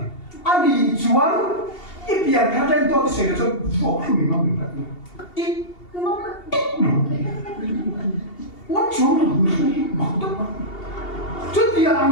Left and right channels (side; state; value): right; late; 2.8 ms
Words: anh đi chuẩn ít biên thằng trên tôi sẽ là cho vô khử nó mình phải ít nó chúa là người mặc tốt mà trước kia